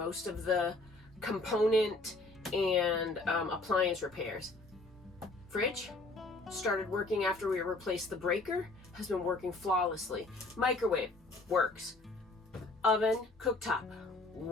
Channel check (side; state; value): right; quieter; 3.0 dB